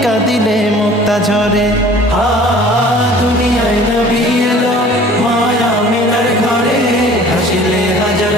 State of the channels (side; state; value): both; normal; correlation 0.48